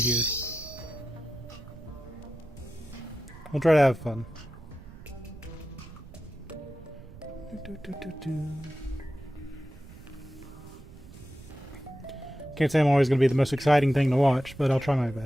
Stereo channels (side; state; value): right; noise; rumble, 18 dB below the sound